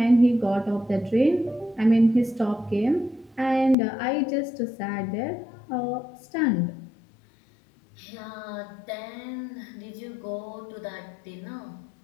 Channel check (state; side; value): drops out; right; at 3.8 s